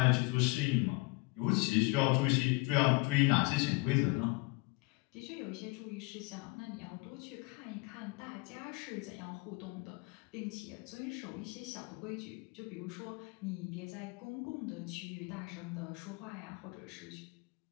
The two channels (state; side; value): quieter; right; 25.6 dB